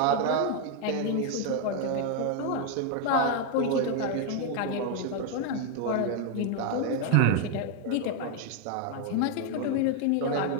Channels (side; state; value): both; different; correlation 0.01